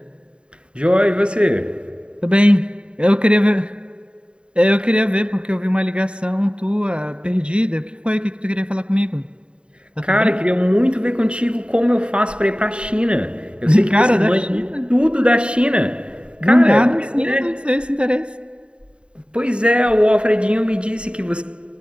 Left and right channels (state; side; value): late; left; 0.054 ms